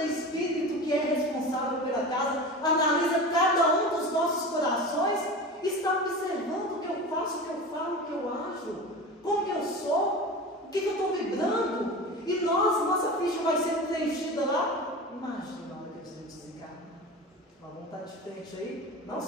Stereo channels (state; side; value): normal; both; correlation 0.31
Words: espírito que é responsável pela casa analisa cada um dos nossos corações e está observando o que eu faço, o que eu falo, o que eu acho, como que eu sou, o que eu estou vibrando. E nossa ficha vai ser preenchida lá. Imagina na hora que a gente desencarna. Nós vamos estar de frente aí, não